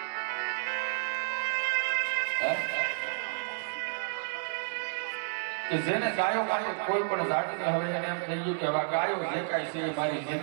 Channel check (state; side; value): silent; left; 57 dB below the other